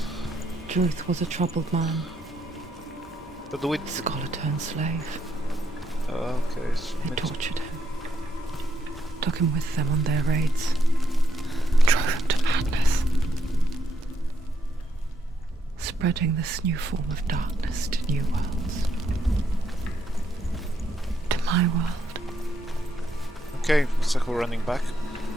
Druth was a troubled man, But do it. scholar turned slave. Okay. They tortured him, took him with them on their raids, drove him to madness, spreading this new form of darkness to new worlds. To my world. Okay, looks like we're running back.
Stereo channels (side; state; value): both; normal; correlation 0.77